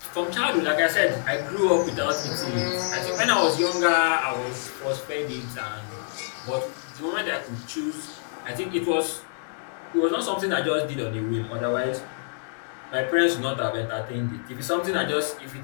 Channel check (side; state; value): right; silent; digital silence